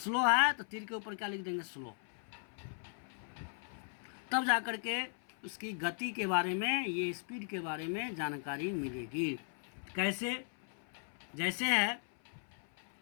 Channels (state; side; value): silent; right; 53 dB below the other